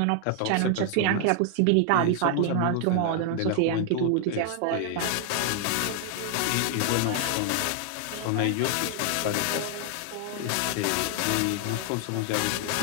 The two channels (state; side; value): different; both; correlation 0.00